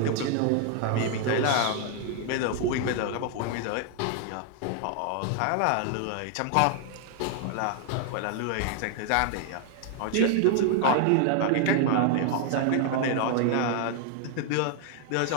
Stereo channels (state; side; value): different; both; correlation 0.00